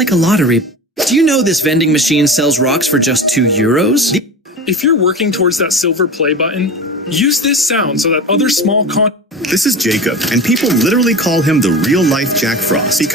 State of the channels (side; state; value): both; normal; correlation 0.31